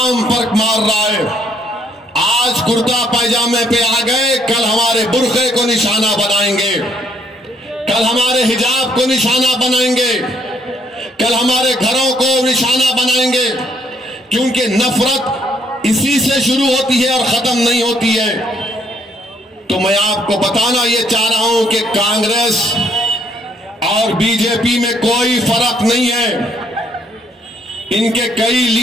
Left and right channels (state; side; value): normal; both; correlation 0.68